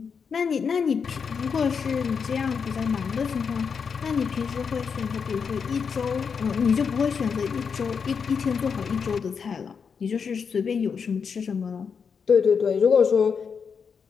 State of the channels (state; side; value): quieter; right; 6.2 dB